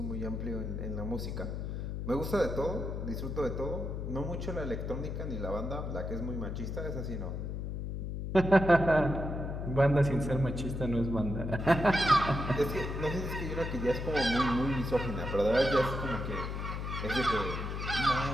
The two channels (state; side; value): noise; left; hum, 4 dB below the sound